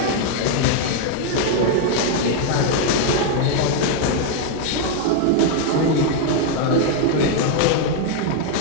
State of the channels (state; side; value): different; both; correlation 0.00